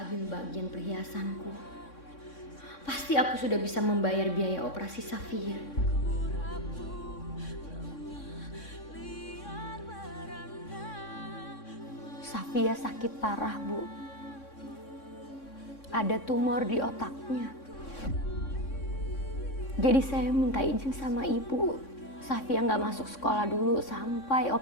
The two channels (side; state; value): right; late; 3.6 ms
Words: ambil bagian perhiasanku, pasti aku sudah bisa membayar biaya operasi Safia. Safia sakit parah, Bu. Ada tumor di otaknya. Jadi saya minta izin sama ibu. Safia nggak masuk sekolah dulu sampai